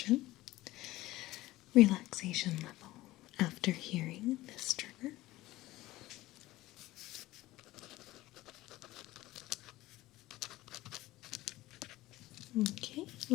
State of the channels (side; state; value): right; quieter; 17.5 dB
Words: relaxation level after hearing this trigger. Okay,